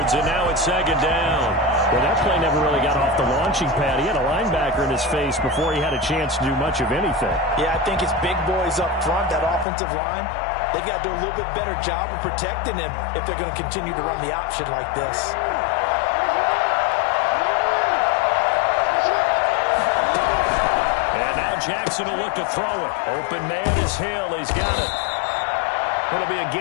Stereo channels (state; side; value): drops out; right; at 9.7 s